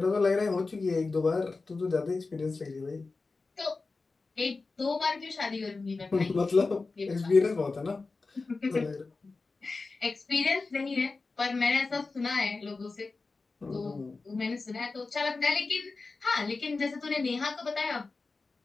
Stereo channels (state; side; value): quieter; right; 3.9 dB